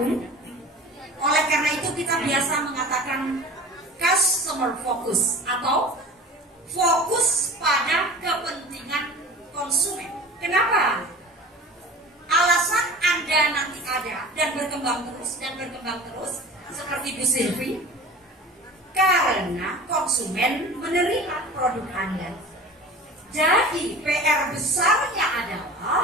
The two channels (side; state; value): both; normal; correlation 0.38